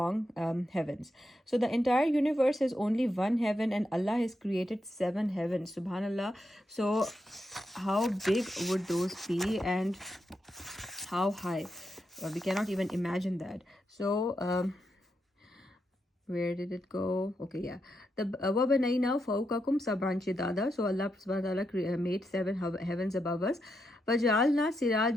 heavens. So the entire universe has only one heaven and Allah has created 7 heavens. Subhanallah. So how big would those be and how high? We cannot even imagine that. So where did it go? Okay, yeah. The وَبَنَيْنَا فَوْقَكُمْ سَبْعًا شِدَادًا. So Allah subhanahu wa ta'ala made 7 heavens above us. وَجَعَلْنَا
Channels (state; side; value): normal; both; correlation 0.84